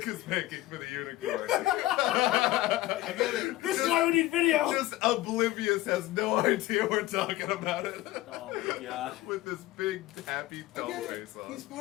is making for the unicorn. I get it. This is why we need video. Just oblivious, has no idea we're talking about it. Oh my god. With this big happy I doll get it. face on. He's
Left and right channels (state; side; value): quieter; right; 16.8 dB